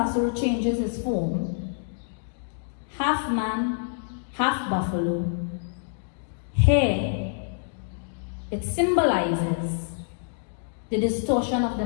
changes his form, half man, half buffalo, here it symbolizes the distortion of the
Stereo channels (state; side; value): silent; right; digital silence